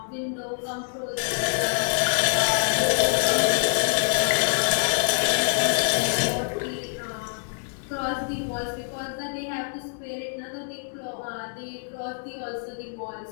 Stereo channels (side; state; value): right; silent; digital silence